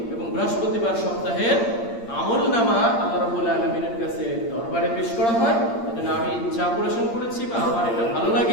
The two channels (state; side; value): late; right; 8.7 ms